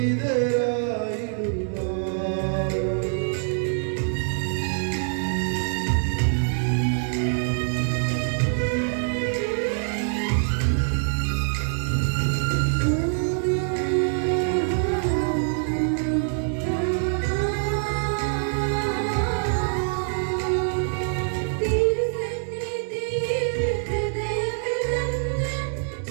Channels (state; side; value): silent; left; digital silence